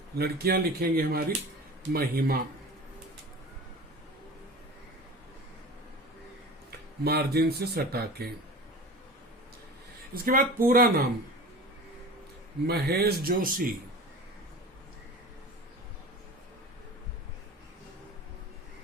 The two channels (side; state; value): both; normal; correlation 0.35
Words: लड़कियां लिखेंगे हमारी महिमा, मार्जिन से सटा के। इसके बाद पूरा नाम महेश जोशी।